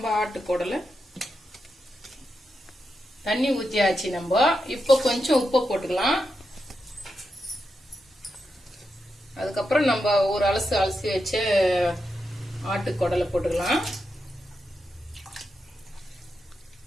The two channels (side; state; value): both; normal; correlation 0.86